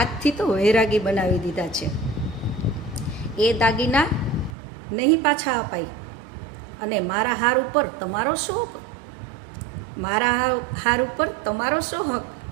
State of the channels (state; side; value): drops out; left; at 4.5 s